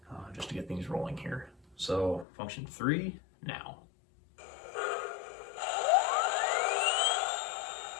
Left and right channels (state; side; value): drops out; right; at 2.2 s